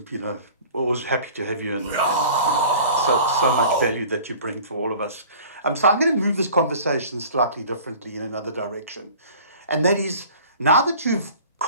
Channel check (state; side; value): inverted; both; correlation -0.45